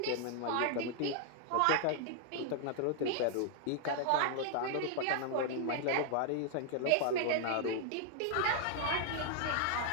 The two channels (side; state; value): both; different; correlation 0.00